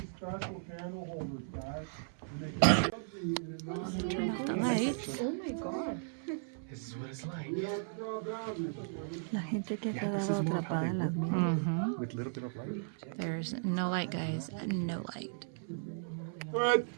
special candle holders, guys, and they can plug the in a non-direct Lights. Oh my god. This is what it's like. We don't draw boundaries. La gente que Yeah, this is more of how they work Mm-hmm. with a little bit of light. There's no light, guys. No light. But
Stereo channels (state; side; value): silent; left; 54 dB below the other